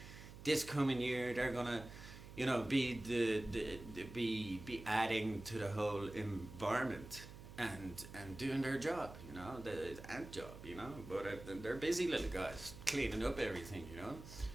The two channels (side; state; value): right; noise; hum, 14 dB below the sound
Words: this coming year. They're gonna, be be adding to the whole environment and doing their job, the ant job, But they're busy little guys cleaning up everything,